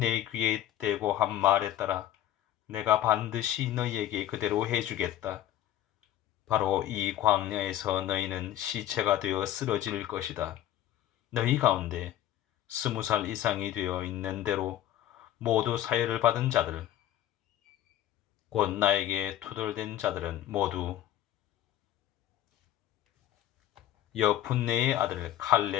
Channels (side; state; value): right; quieter; 12.3 dB